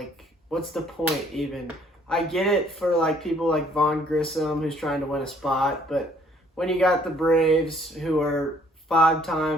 what's the point even? I get it for, like, people like Vaughn Grissom who's trying to win a spot, but when you got the Braves, who are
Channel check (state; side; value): normal; both; correlation 0.62